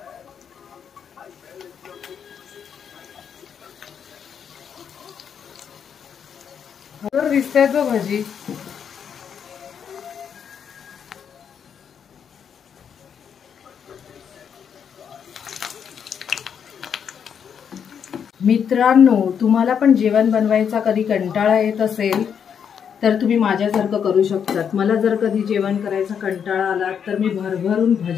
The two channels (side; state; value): right; quieter; 7.6 dB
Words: दिसते तो भजी। मित्रांनो, तुम्हाला पण जेवण बनवायचा कधी कंटाळा येत असेल तर तुम्ही माझ्यासारखं करू शकतात। मला जर कधी जेवण करायचा कंटाळा आला तर मी भरभरून